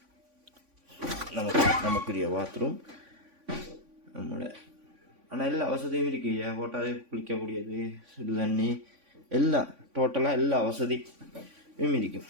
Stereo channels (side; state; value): left; late; 3.5 ms